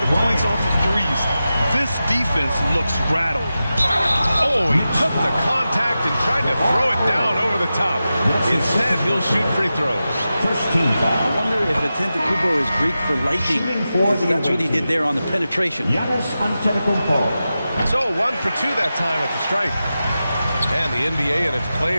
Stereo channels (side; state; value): both; inverted; correlation -0.92